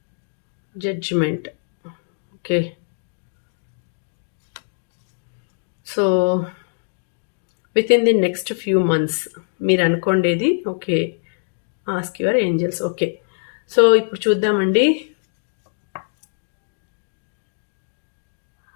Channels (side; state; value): right; silent; digital silence